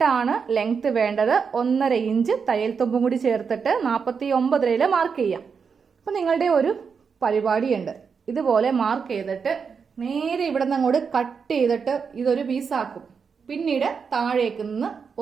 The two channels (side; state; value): left; quieter; 5.9 dB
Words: ലെങ്ത് വേണ്ടത്. 1.5 ഇഞ്ച് തയ്യൽ തുമ്പും കൂടി ചേർത്തിട്ട് 49 മാർക്ക് ചെയ്യാം. അപ്പൊ നിങ്ങളുടെ ഒരു പരിപാടിയുണ്ട്. ഇതുപോലെ മാർക്ക് ചെയ്തിട്ട് നേരെ ഇവിടെ നിന്ന് അങ്ങോട്ട് കട്ട് ചെയ്തിട്ട് ഇതൊരു പീസാക്കും. പിന്നീട് താഴേക്ക് നിന്ന്